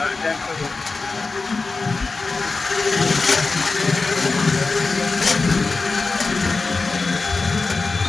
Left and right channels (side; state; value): right; quieter; 3.9 dB